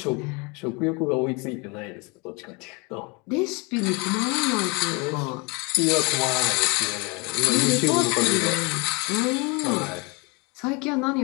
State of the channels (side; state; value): right; quieter; 29.3 dB